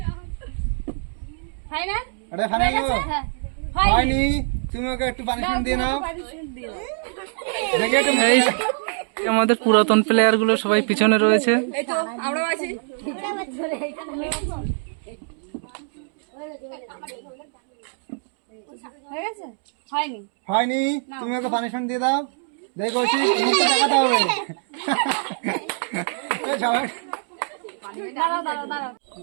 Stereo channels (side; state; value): left; silent; 61 dB below the other